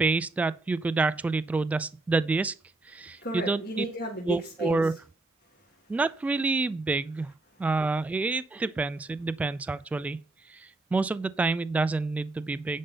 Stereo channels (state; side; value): quieter; left; 3.0 dB